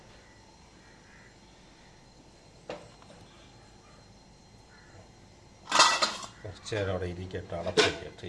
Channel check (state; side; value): identical; both; correlation 1.00